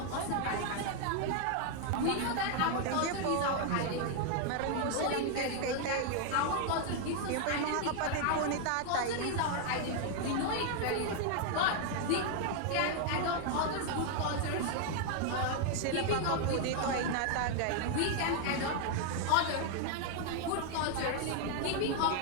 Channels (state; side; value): different; both; correlation 0.00